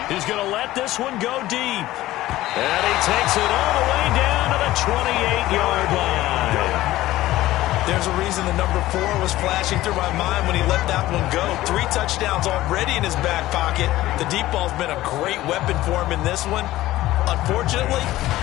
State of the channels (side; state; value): right; quieter; 16.0 dB